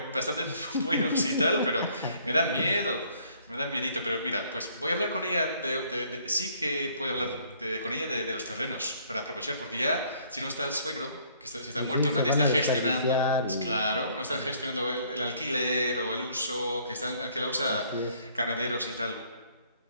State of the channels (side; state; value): both; inverted; correlation -0.62